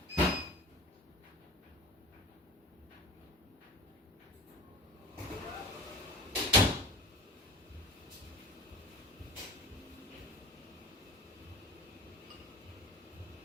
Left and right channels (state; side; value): normal; both; correlation 0.38